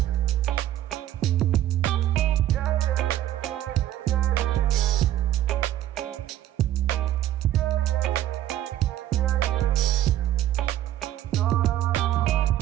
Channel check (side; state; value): left; quieter; 12.9 dB